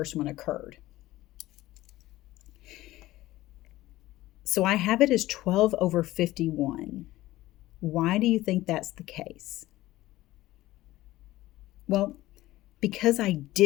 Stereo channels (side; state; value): right; quieter; 16.7 dB